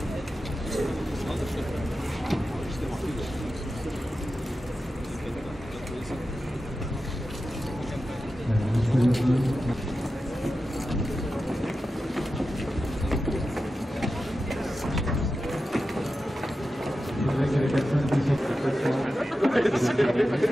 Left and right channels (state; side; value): normal; both; correlation 0.92